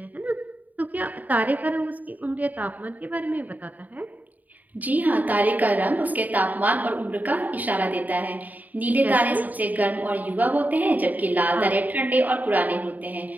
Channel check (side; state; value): left; late; 0.079 ms